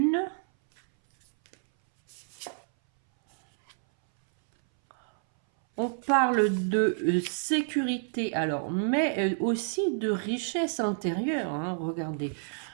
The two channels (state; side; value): silent; left; 59 dB below the other